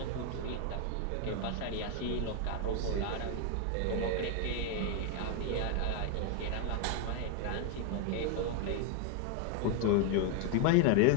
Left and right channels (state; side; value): different; both; correlation 0.01